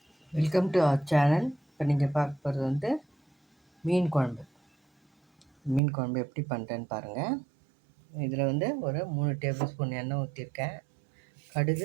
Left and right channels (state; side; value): drops out; left; at 5.8 s